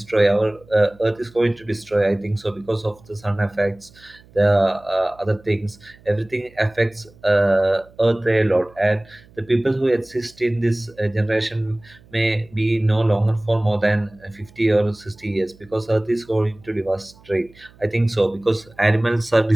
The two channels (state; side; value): noise; right; hum, 26 dB below the sound